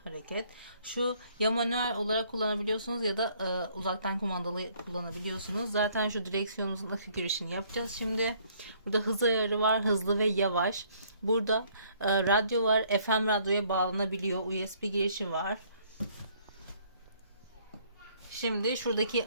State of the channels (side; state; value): both; inverted; correlation -0.63